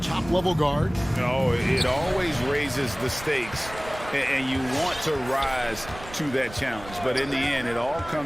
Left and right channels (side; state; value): right; noise; rumble, 16 dB below the sound